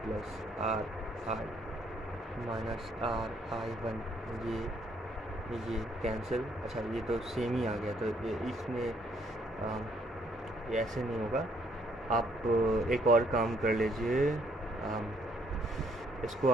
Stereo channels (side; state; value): both; normal; correlation 0.67